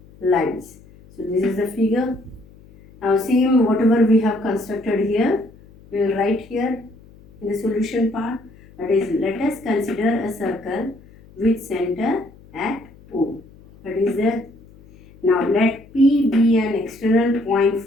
lines. So this is the figure. Now same whatever we have constructed here, we will write here in the solution part. That is, let us consider a circle with center at O. That is there. Now let P be an external point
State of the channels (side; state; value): left; noise; hum, 24 dB below the sound